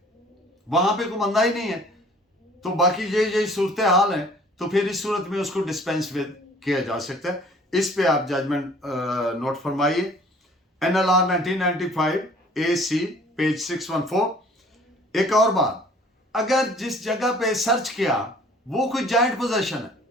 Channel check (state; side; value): normal; both; correlation 0.53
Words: वहां पे कोई बंदा ही नहीं है, तो बाकी यही सूरत हाल है, तो फिर इस सूरत में उसको डिस्पेंस विद किया जा सकता है। इस पे आप जजमेंट नोट फरमाइए। NLR 1995 AC page 614। एक और बात, अगर जिस जगह पे सर्च किया वो कोई जॉइंट पोजेशन है